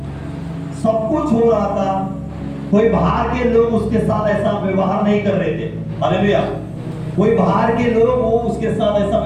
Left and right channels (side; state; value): both; identical; correlation 1.00